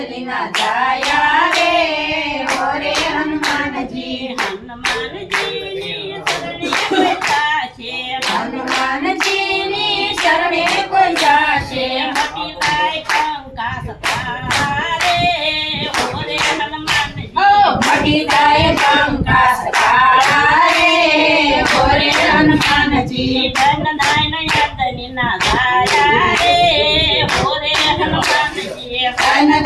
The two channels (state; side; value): identical; both; correlation 1.00